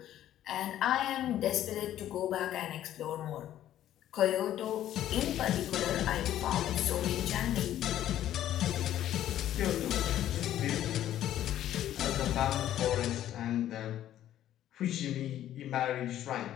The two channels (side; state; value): right; quieter; 12.2 dB